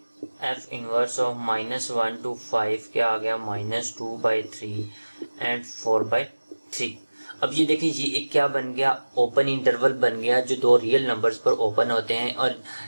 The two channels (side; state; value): both; inverted; correlation -1.00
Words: एफ इनवर्स ऑफ -1 to 5 क्या आ गया, -2/3 एंड 4/3। अब ये देखिए ये एक क्या बन गया, ओपन इंटरवल बन गया जो दो रियल नंबर्स पर ओपन होते हैं। और